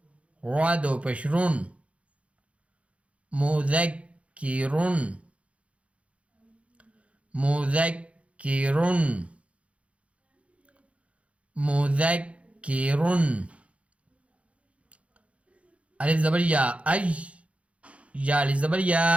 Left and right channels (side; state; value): left; late; 0.063 ms